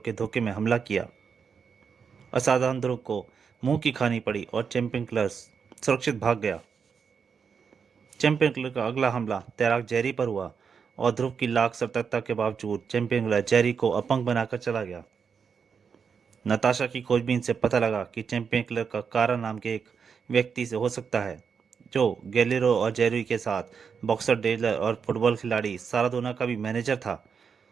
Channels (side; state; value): left; quieter; 6.3 dB